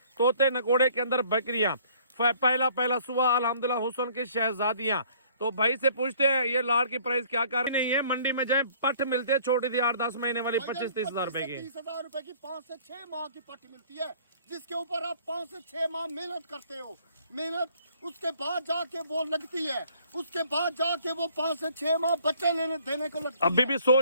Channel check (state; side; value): inverted; both; correlation -0.57